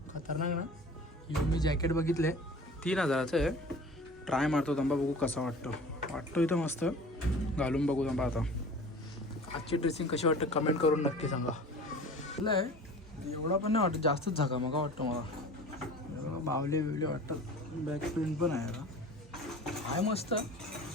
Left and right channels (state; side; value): normal; both; correlation 0.41